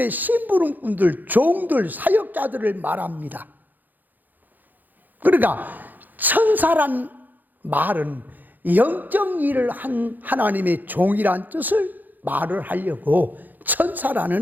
심부름꾼들, 종들, 사역자들을 말합니다. 그러니까 천사란 말은 영적 일을 한 하나님의 종이란 뜻을 말을 하려고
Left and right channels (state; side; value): late; left; 0.085 ms